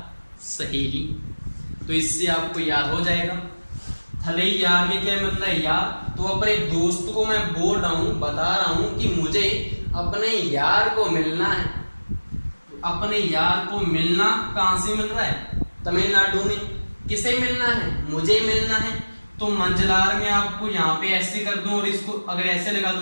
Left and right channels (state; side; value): inverted; both; correlation -1.00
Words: सहेली। तो इससे आपको याद हो जाएगा थलैयार में क्या मतलब है? यार। तो अपने दोस्त को मैं बोल रहा हूं, बता रहा हूं कि मुझे अपने यार को मिलना है। तो अपने यार को मिलना कहां से मिल रहा है? तमिलनाडु में। किसे मिलना है? मुझे मिलना है। तो मंजलार में आपको यहाँ पे ऐसे कर दूं और इसको अगर ऐसे लगा